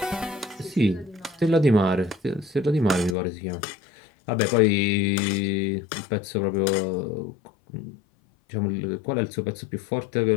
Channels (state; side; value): drops out; right; at 3.2 s